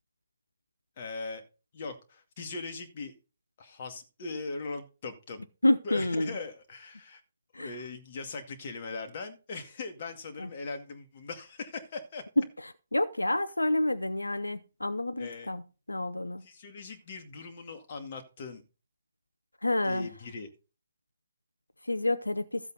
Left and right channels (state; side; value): inverted; both; correlation -0.95